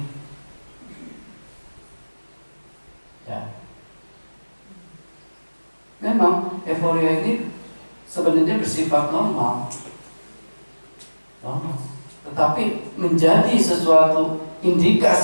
Ya. Memang euforia ini sebenarnya bersifat normal, tetapi menjadi sesuatu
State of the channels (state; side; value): inverted; both; correlation -1.00